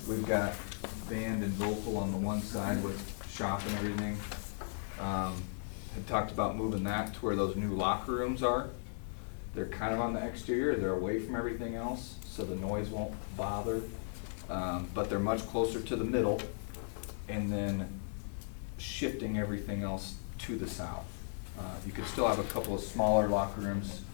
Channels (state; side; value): silent; right; digital silence